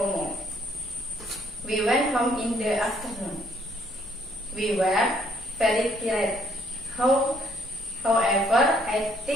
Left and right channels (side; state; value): both; normal; correlation 0.66